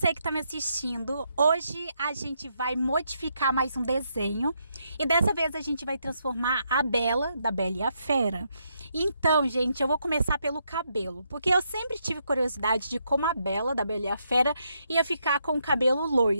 que está me assistindo. Hoje a gente vai modificar mais um desenho e dessa vez a gente vai transformar a Bela da Bela e a Fera. Então, gente, eu vou começar pelo cabelo, porque eu sempre tive curiosidade de como a Bela da Bela e a Fera ia ficar com o cabelo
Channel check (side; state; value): both; inverted; correlation -0.78